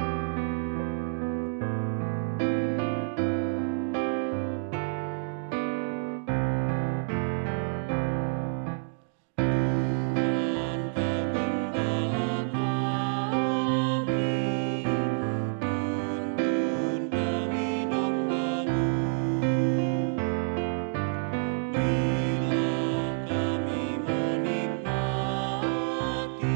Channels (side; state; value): left; silent; digital silence